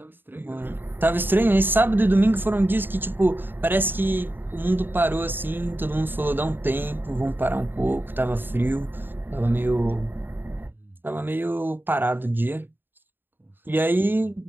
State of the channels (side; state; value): left; late; 0.096 ms